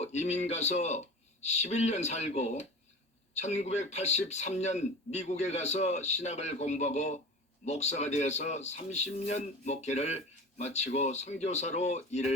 이민 가서 11년 살고 1983년 미국에 가서 신학을 공부하고 목사가 되어서 30년 목회를 마치고 선교사로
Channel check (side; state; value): both; normal; correlation 0.35